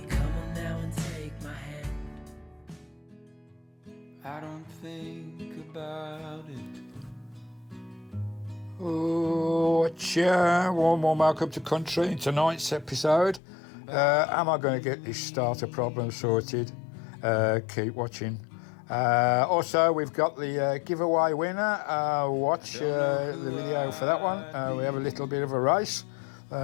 Come on now and take my hand. I don't think about it. Oh, warm welcome to country in tonight's episode. Am I going to get this starter problem sorted? Keep watching. Also, we've got the giveaway winner. Watch the video for that one. We have a little bit of a race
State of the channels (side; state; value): right; drops out; at 13.4 s